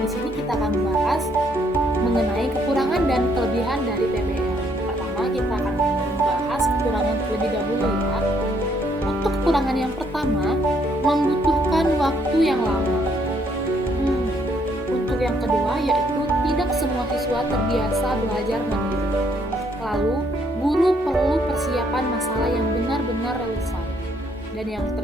Di sini kita akan membahas mengenai kekurangan dan kelebihan dari PBL. Pertama, kita akan membahas kekurangan terlebih dahulu ya. Untuk kekurangan yang pertama, membutuhkan waktu yang lama. Untuk yang kedua, yaitu tidak semua siswa terbiasa belajar mandiri. Lalu, guru perlu persiapan masalah yang benar-benar relevan. Dan yang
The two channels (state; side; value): normal; both; correlation 0.69